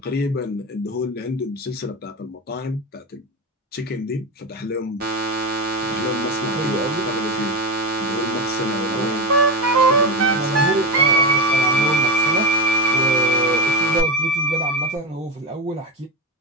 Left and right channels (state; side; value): normal; both; correlation 0.17